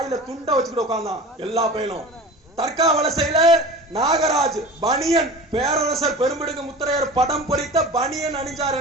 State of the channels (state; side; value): normal; both; correlation 0.36